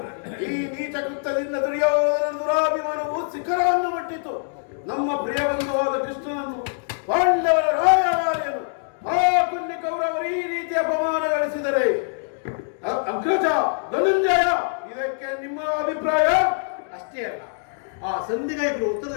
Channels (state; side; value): silent; right; digital silence